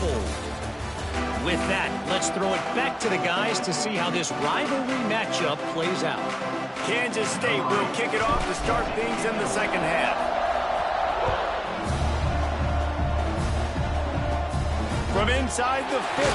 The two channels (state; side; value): identical; both; correlation 1.00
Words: With that, let's throw it back to the guys to see how this rivalry matchup plays out. Kansas State will kick it off to start things in the second half. From inside the 15,